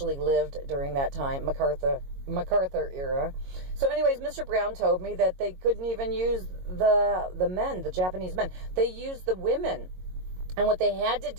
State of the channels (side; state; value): left; late; 22 ms